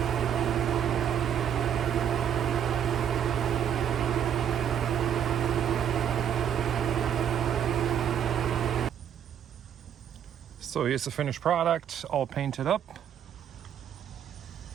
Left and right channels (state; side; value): quieter; left; 9.0 dB